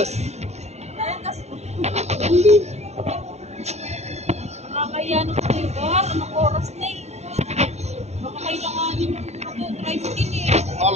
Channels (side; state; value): left; late; 0.32 ms